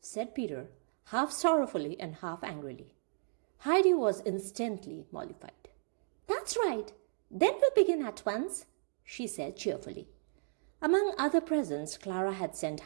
Peter, half sorrowfully and half angrily. Heidi was instantly mollified. "That's right. Then we'll begin at once," she said cheerfully. Among other presents, Clara had sent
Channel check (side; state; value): left; silent; digital silence